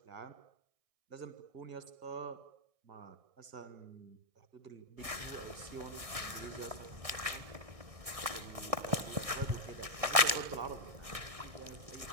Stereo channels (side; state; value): left; late; 1.6 ms